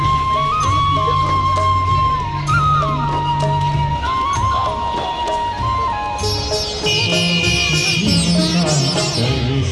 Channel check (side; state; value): both; identical; correlation 1.00